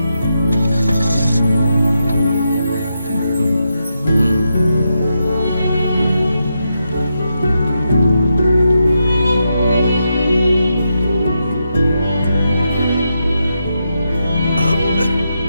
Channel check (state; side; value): inverted; both; correlation -0.85